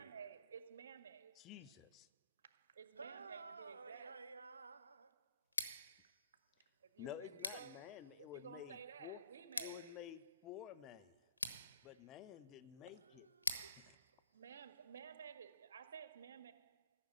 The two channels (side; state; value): both; inverted; correlation -0.66